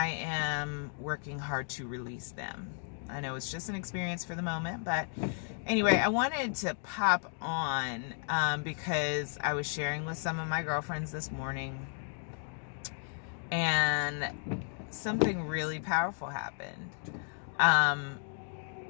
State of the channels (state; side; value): silent; right; 55 dB below the other